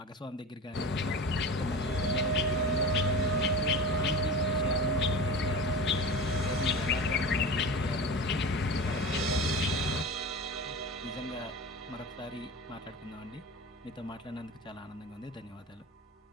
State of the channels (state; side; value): normal; both; correlation 0.32